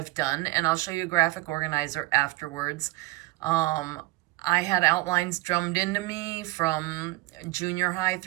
done, and I'll show you a graphic organizer afterwards. I had outlines drummed into me from junior high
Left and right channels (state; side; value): quieter; left; 20.9 dB